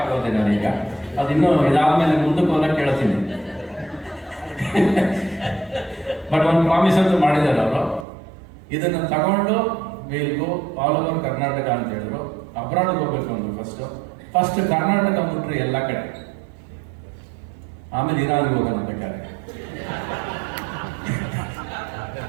ಆಗೋದೆ ನಾನೀಗ. ಅದು ಇನ್ನೂ ಇದಾದ್ಮೇಲೆ ಮುಂದಕ್ಕೆ ಹೋದಾಗ ಕೇಳ್ತೀನಿ. ಬಟ್ ಒಂದು ಪ್ರಾಮಿಸ್ ಅಂತೂ ಮಾಡಿದ್ದಾರೆ ಅವರು, ಇದನ್ನು ತಗೊಂಡು will go all over Karnataka ಅಂತ ಹೇಳಿದ್ರು. ಅಬ್ರಾಡ್ಗೆ ಹೋಗ್ಬೇಕು ಅಂದ್ರು ಫಸ್ಟ್ ಕರ್ನಾಟಕ ಬಿಟ್ರೆ ಎಲ್ಲ ಕಡೆ, ಆಮೇಲೆ ಇರಾನ್ಗೆ ಹೋಗೋಣ ಬೇಕಾದ್ರೆ.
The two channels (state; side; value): drops out; left; at 8.1 s